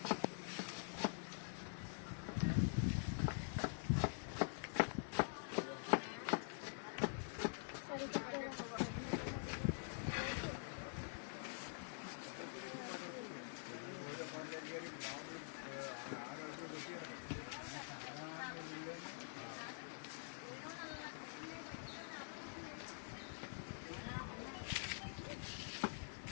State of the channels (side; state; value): right; silent; digital silence